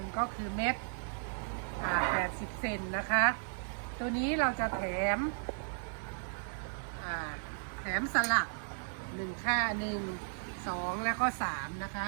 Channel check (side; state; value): left; silent; 54 dB below the other